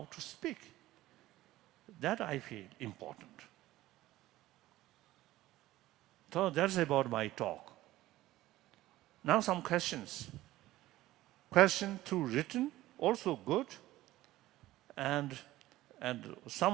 to speak. That I feel important. So that's about my talk. Now some questions. Question through written, also good. And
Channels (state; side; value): quieter; left; 16.2 dB